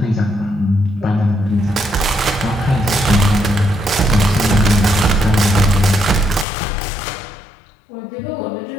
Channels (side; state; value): right; drops out; at 6.5 s